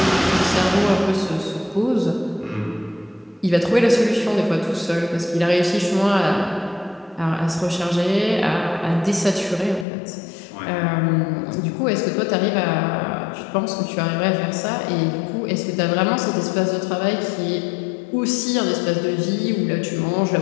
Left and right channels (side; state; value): right; drops out; at 9.9 s